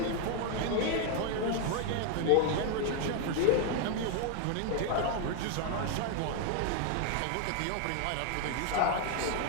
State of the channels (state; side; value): different; both; correlation 0.01